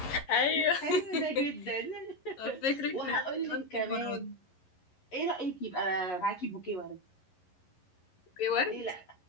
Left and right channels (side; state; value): right; late; 11 ms